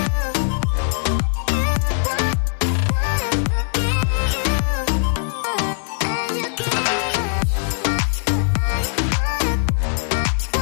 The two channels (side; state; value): right; silent; 65 dB below the other